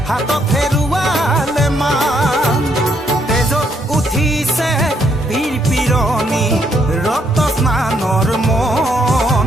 হাতত হেৰুৱালে মান তেজত উঠিছে বীৰ পিৰণি ৰক্ত স্নানৰ মন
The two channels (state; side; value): normal; both; correlation 0.72